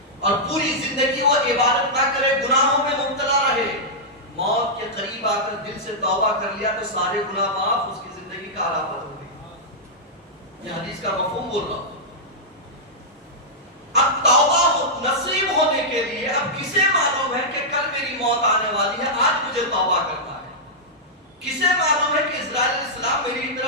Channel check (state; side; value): normal; both; correlation -0.09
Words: اور پوری زندگی وہ عبادت نہ کرے، گناہوں میں مبتلا رہے، موت کے قریب آ کر دل سے توبہ کر لیا تو سارے گناہ معاف، اس کی زندگی کا آلہ بدل گئی۔ یہ حدیث کا مفہوم بول رہا ہوں۔ اب توبہ نصیب ہونے کے لیے اب کسے معلوم ہے کہ کل میری موت آنے والی ہے، آج مجھے توبہ کرنا ہے؟ کسے معلوم ہے کہ اسرائیل علیہ السلام میری